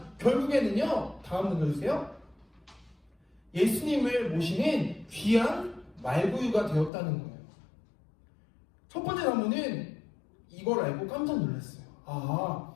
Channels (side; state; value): right; drops out; at 6.9 s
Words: 결국에는요, 다음 눌러주세요. 예수님을 모시는 귀한 말구유가 되었다는 거예요. 첫 번째 나무는 이걸 알고 깜짝 놀랐어요. 아,